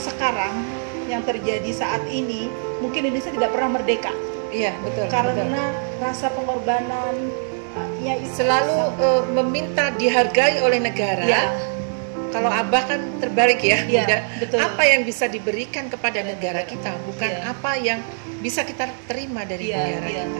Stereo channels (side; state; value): left; silent; digital silence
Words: yang terjadi saat ini, mungkin Indonesia tidak pernah merdeka. Iya betul. Karena rasa pengorbanan selalu meminta dihargai oleh negara. Ya. Kalau Abah kan terbalik ya, Ya, Bunda. betul. Apa yang bisa diberikan kepada negara kita, bukan Ya. apa yang bisa kita terima dari negara ya, kita.